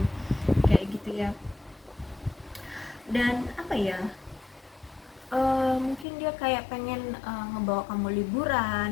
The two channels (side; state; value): right; drops out; at 6.1 s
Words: kayak gitu ya. Dan apa ya, mungkin dia kayak pengen ngebawa kamu